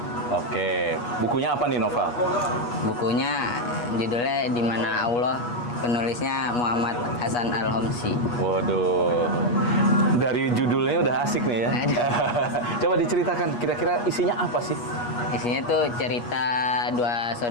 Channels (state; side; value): late; right; 8.3 ms